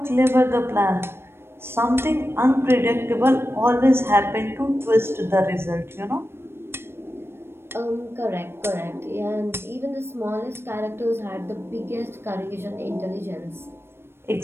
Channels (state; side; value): late; left; 0.12 ms